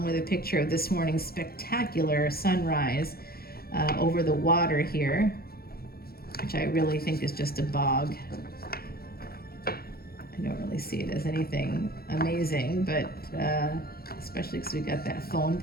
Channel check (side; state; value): right; late; 0.44 ms